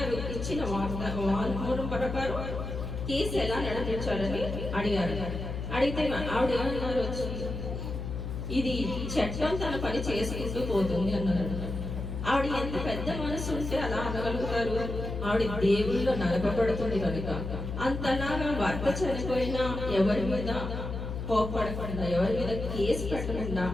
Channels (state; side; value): noise; left; hum, 5 dB below the sound